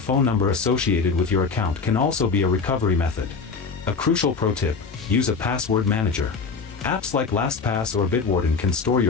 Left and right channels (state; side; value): quieter; right; 4.9 dB